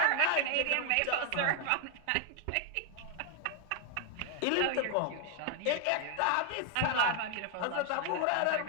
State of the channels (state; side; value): different; both; correlation 0.00